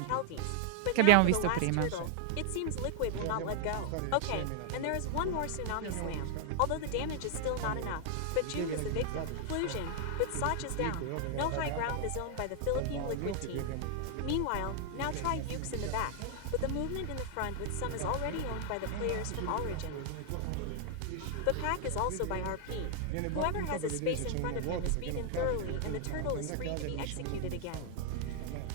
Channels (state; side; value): different; both; correlation 0.00